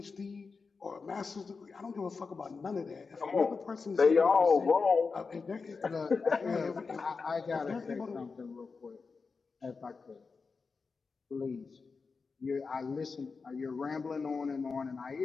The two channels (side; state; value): right; quieter; 4.7 dB